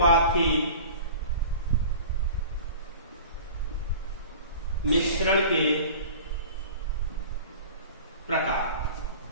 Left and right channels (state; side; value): inverted; both; correlation -0.41